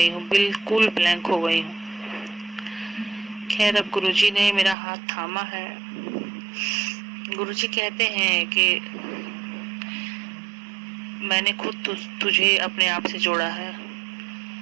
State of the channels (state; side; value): drops out; left; at 4.8 s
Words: हूँ, बिल्कुल ब्लैंक हो गई हूँ। खैर अब गुरुजी ने मेरा हाथ थामा है। गुरुजी कहते हैं कि मैंने खुद तुझे अपने आप से जोड़ा है।